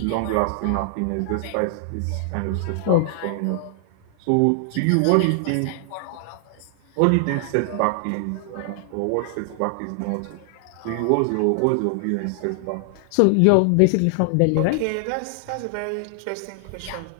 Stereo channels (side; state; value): both; different; correlation 0.00